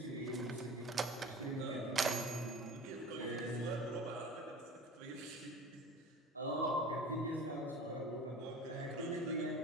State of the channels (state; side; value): normal; both; correlation 0.38